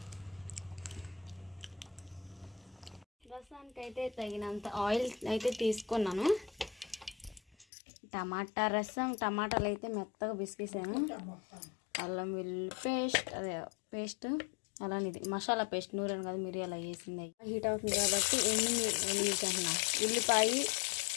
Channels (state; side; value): drops out; right; at 7.7 s